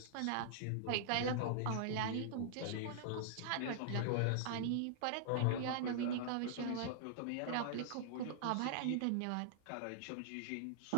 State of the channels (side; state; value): both; different; correlation -0.01